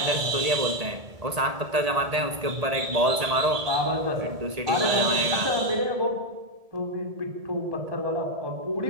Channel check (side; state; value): left; late; 1.7 ms